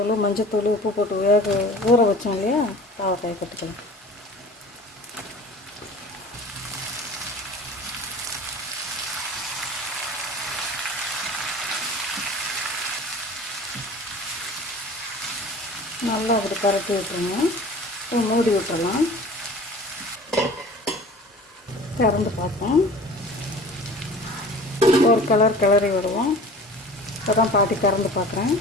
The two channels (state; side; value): normal; both; correlation 0.42